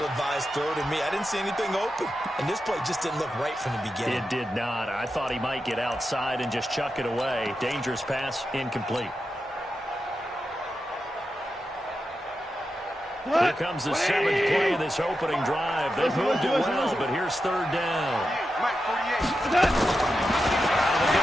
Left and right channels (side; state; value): both; normal; correlation 0.89